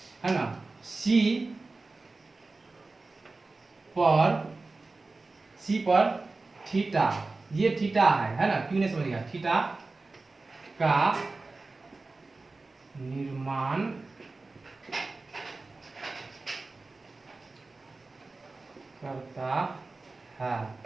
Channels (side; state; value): left; quieter; 3.5 dB